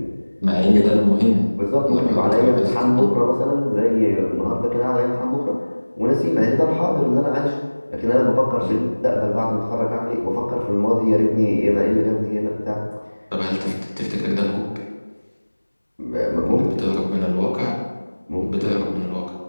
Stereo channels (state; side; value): inverted; both; correlation -1.00